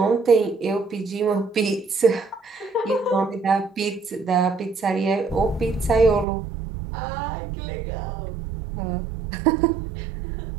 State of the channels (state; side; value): drops out; left; at 6.2 s